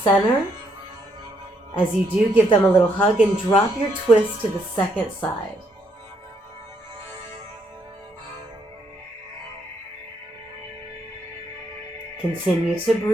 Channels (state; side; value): normal; both; correlation 0.73